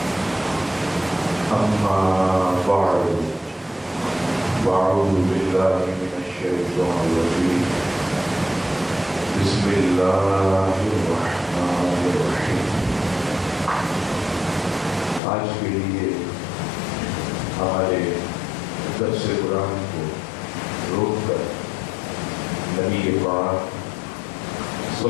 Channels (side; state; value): right; drops out; at 15.2 s